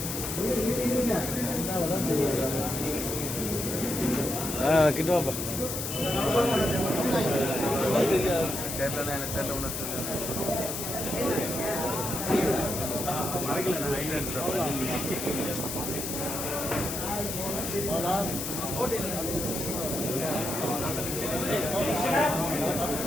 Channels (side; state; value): left; noise; hiss, 4 dB below the sound